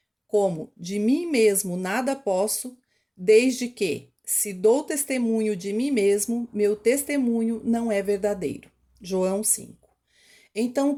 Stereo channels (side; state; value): both; identical; correlation 1.00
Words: Como de mim mesmo nada posso, desde que, se dou testemunho de mim mesmo, meu testemunho não é verdadeiro. João 5. Então,